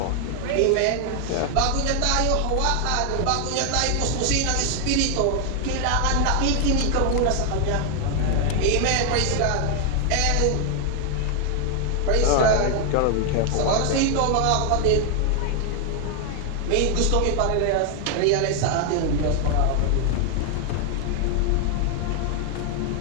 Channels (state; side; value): different; both; correlation 0.00